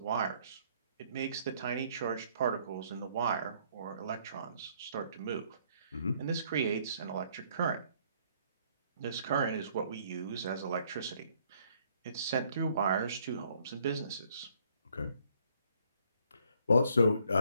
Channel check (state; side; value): inverted; both; correlation -0.65